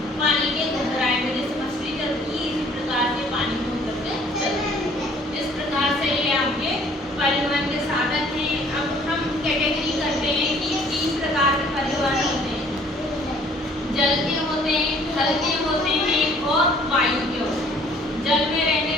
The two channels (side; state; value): both; normal; correlation 0.57